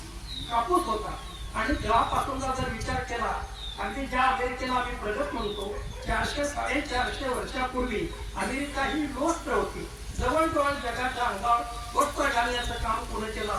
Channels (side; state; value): both; identical; correlation 1.00